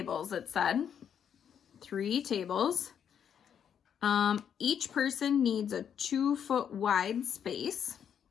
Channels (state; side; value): quieter; right; 8.3 dB